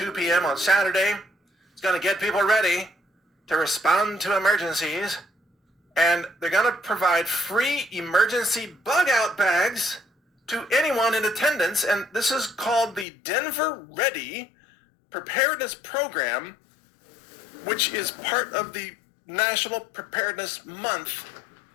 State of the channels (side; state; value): right; drops out; at 13.1 s